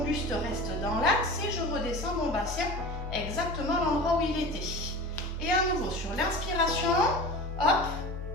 buste reste dans l'axe et je redescends mon bassin exactement à l'endroit où il était. Et à nouveau, sur l'inspiration, hop,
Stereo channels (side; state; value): both; normal; correlation 0.34